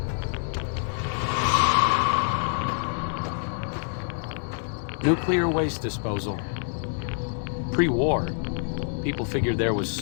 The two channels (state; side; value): silent; right; 61 dB below the other